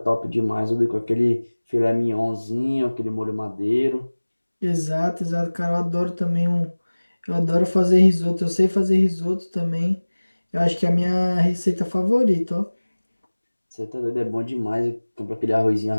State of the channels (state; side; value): inverted; both; correlation -1.00